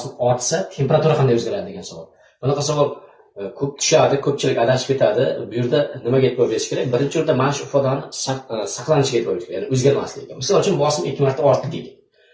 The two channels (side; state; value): both; identical; correlation 1.00